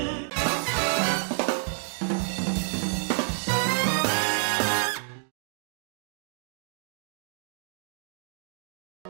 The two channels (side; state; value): left; silent; digital silence